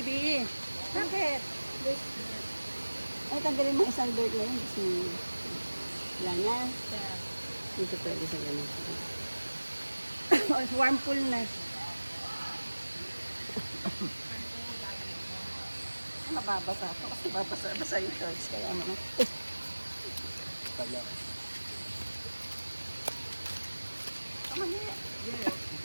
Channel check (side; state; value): both; inverted; correlation -1.00